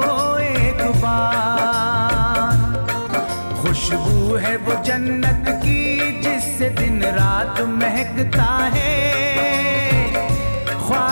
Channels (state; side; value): inverted; both; correlation -1.00